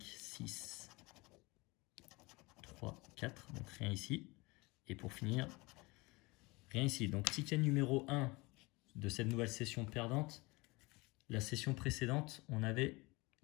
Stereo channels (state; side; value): quieter; right; 24.2 dB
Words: 6, 3, 4. Donc rien ici. Et pour finir, rien ici. Donc ticket numéro 1 de cette nouvelle session perdante. La session précédente, on avait